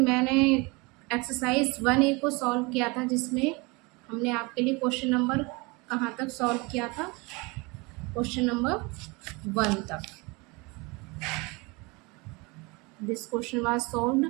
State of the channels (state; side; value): quieter; left; 26.7 dB